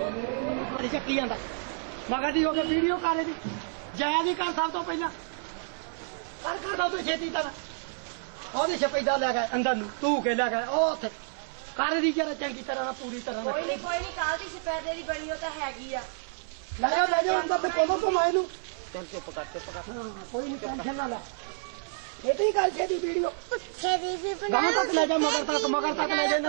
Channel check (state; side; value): silent; left; 58 dB below the other